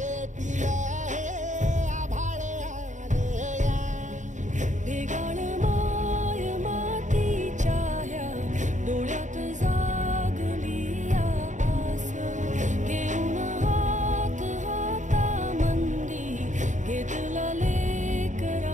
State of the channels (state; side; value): late; left; 0.36 ms